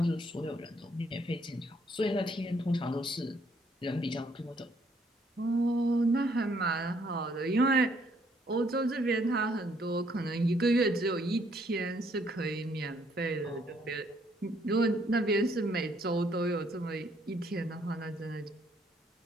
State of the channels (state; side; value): normal; both; correlation 0.67